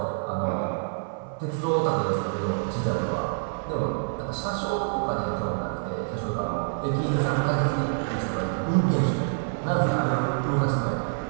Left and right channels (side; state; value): left; silent; 57 dB below the other